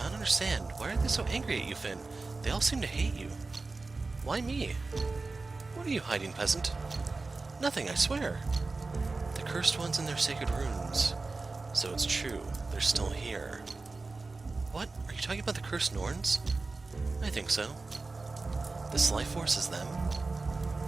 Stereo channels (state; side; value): quieter; left; 3.7 dB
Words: don't understand. Why are they so angry at you, Finn? They all seem to hate you. Why me? What are you hiding, peasant? Nothing, I swear. The cursed ones in their sacred runes. So it's true. They're still here. What? Are you talking about the cursed Norns? I think so. This life force is them.